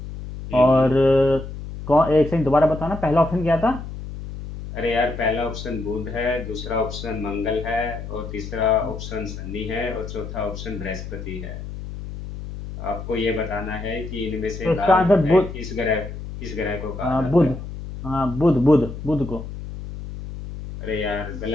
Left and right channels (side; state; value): left; noise; hum, 9 dB below the sound